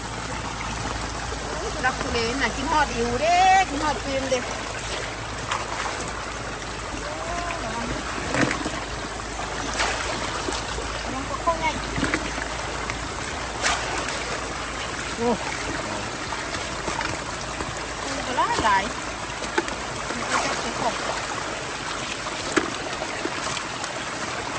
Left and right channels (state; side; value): identical; both; correlation 1.00